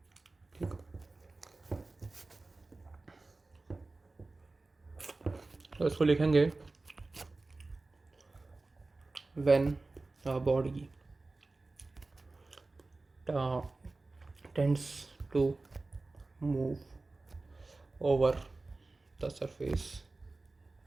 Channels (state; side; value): quieter; left; 3.3 dB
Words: ठीक। तो इसको लिखेंगे when a body tends to move over the surface